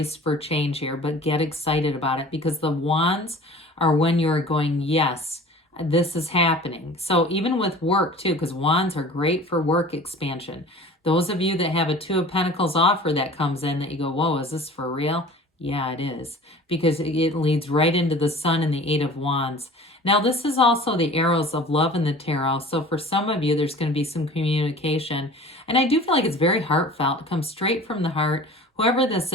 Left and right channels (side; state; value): both; normal; correlation 0.43